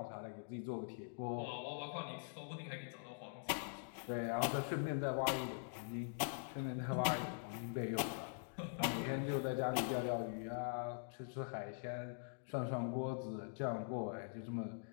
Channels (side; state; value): right; silent; digital silence